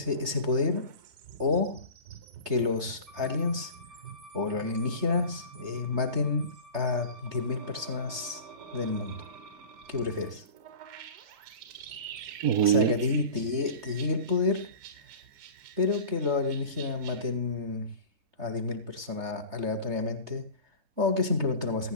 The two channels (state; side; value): late; left; 3.3 ms